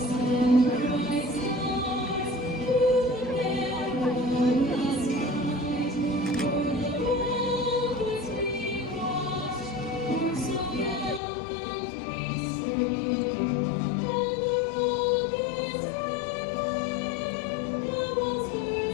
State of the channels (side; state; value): right; drops out; at 11.2 s